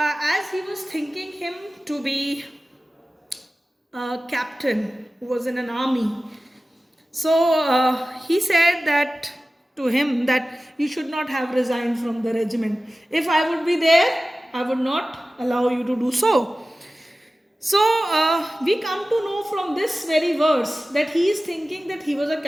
he was thinking him to be a captain who was in an army, so he said that to him that you should not have resigned from the regiment. If I would be there, I would not allow you to do so. So, we come to know from this very verse that he is thinking that he was a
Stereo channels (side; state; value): both; normal; correlation 0.96